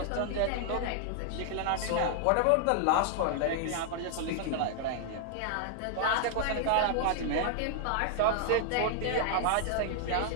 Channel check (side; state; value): both; different; correlation 0.00